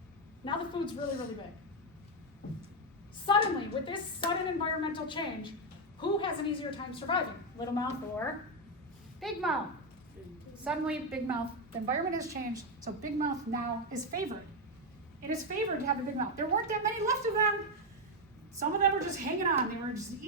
Now the food's really, really big. Suddenly, with this sudden environmental change, who has an easier time surviving? Little mouth or big mouth? Suddenly, big mouth. The environment has changed, so big mouth now is favored. It is favored to have a big mouth. There weren't that many left of them. Some of them were just hanging on. They were just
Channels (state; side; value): normal; both; correlation 0.05